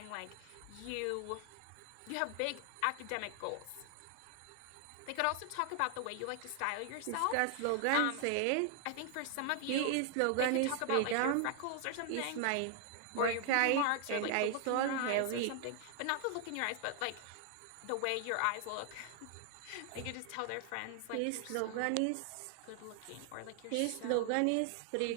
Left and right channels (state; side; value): different; both; correlation 0.00